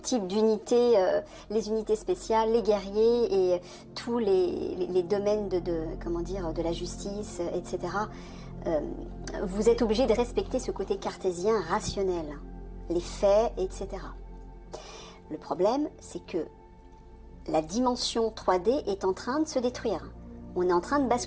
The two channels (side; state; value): both; identical; correlation 1.00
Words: d'unité, les unités spéciales, les guerriers et tous les domaines de la justice, etc., vous êtes obligé de respecter ce côté cartésien rationnel, les faits, etc. Le problème, c'est que la dimension 3D est en train de se détruire. On est en train de